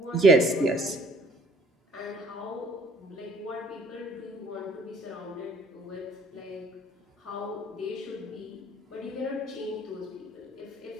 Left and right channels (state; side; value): normal; both; correlation 0.58